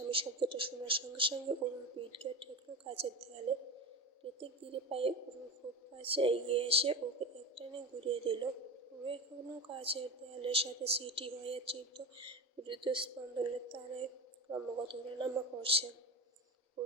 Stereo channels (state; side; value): normal; both; correlation 0.25